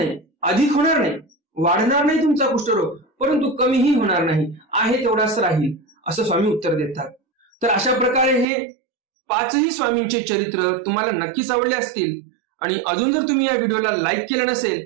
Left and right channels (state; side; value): drops out; left; at 8.5 s